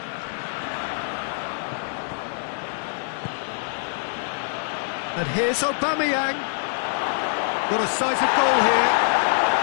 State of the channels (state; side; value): silent; right; digital silence